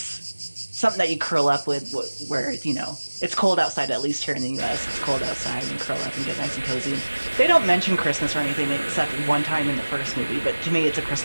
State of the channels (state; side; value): inverted; both; correlation -1.00